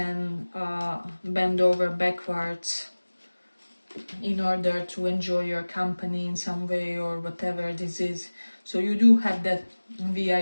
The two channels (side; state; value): both; inverted; correlation -1.00